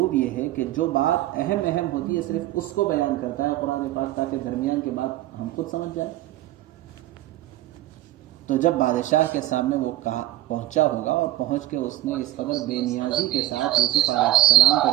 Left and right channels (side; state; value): left; quieter; 15.0 dB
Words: یہ ہے کہ جو بات اہم ہوتی ہے صرف اس کو بیان کرتا ہے قرآن پاک، تاکہ درمیان کے بات ہم خود سمجھ جائیں۔ تو جب بادشاہ کے سامنے وہ پہنچا ہوگا اور پہنچ کے اس نے اس قدر بے نیازی کے ساتھ یوسف علیہ السلام کا